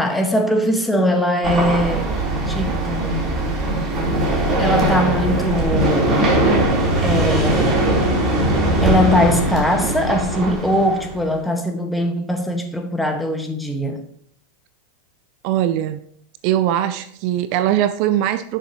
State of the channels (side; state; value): both; normal; correlation 0.31